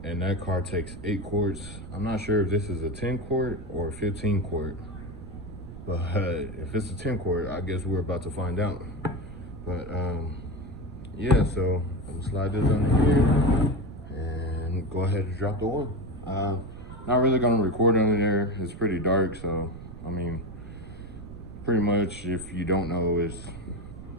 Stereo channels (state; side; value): noise; right; rumble, 13 dB below the sound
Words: and that car takes 8 quarts. I'm not sure if this is a 10 quart or a 15 quart, but if it's a 10 quart, I guess we're about to find out. But yeah, so I'm gonna slide this under here and go ahead and drop the oil. Not really gonna record under there. It's pretty dark, so I mean, pretty much if you don't know, is